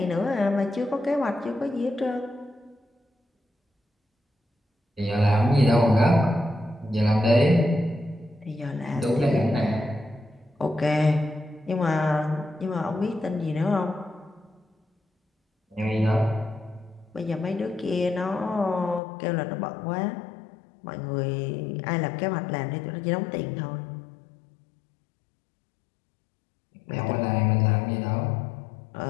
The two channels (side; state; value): right; drops out; at 19.0 s